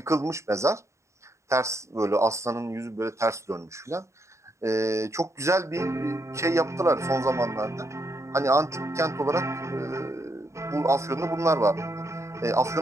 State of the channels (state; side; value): late; left; 0.14 ms